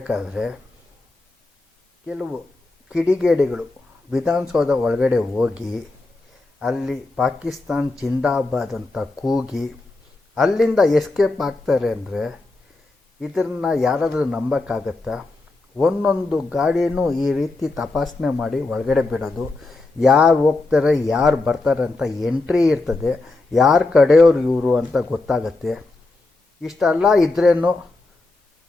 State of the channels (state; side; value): quieter; right; 3.2 dB